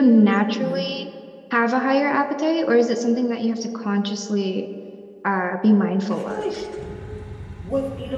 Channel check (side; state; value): both; identical; correlation 1.00